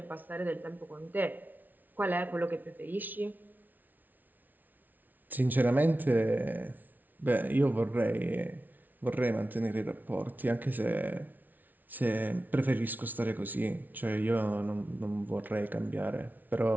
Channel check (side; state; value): left; late; 0.083 ms